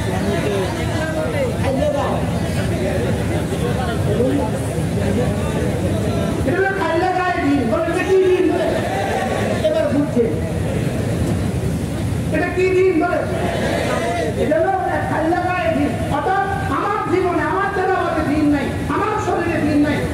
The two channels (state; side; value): identical; both; correlation 1.00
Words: এটা খাইলে গায়ে দিন বলে, এটা কি দিন বলে? এবার বুঝছে এটা কি দিন বলে? এটা হলো খাইলে গায়ে দিন। অর্থাৎ আমার জীবনে, আমার তেলাওয়াতে দিন নাই, আমার শরীরে দিন নাই,